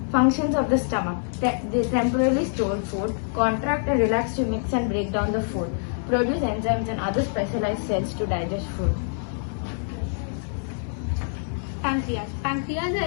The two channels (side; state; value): right; silent; digital silence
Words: Functions of the stomach. They temporarily store food, contract and relax to mix and break down the food, produce enzymes and other specialized cells to digest food. Pancreas. Pancreas